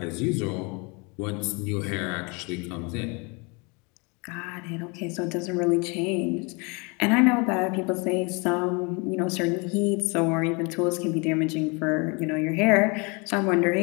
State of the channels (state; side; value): quieter; right; 30.2 dB